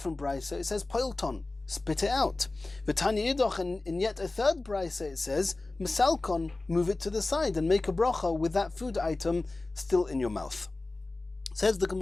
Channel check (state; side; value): quieter; right; 3.1 dB